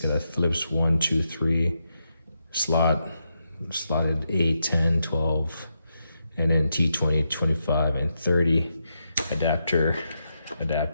a Phillips 1, 2, 3 slotted 8, 10, 12, and then T20, 25, and 30 adapter,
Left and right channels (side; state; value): both; inverted; correlation -0.83